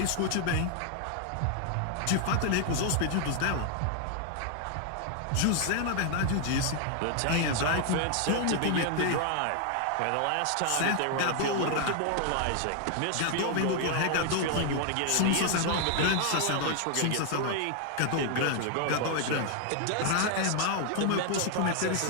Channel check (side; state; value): both; different; correlation 0.00